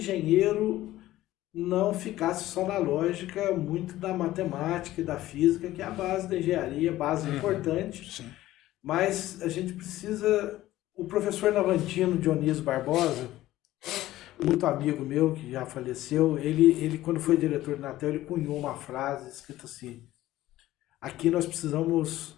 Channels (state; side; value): quieter; right; 15.4 dB